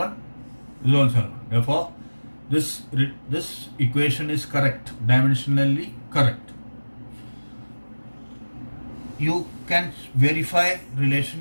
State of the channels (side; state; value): both; inverted; correlation -1.00